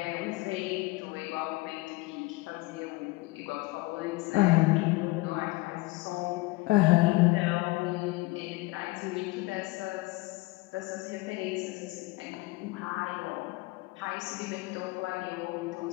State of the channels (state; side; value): quieter; right; 21.8 dB